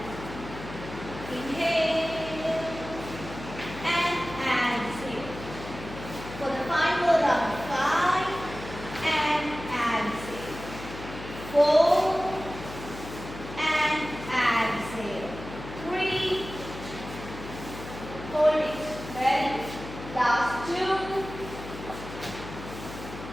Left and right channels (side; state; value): left; noise; hum, 12 dB below the sound